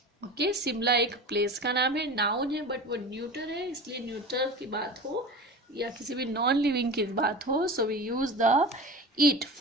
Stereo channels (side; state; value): both; normal; correlation 0.33